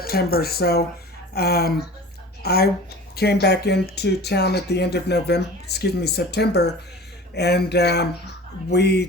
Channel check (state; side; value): normal; both; correlation 0.39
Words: So um, I came back into town at the end of November, excuse me, September, and Yeah,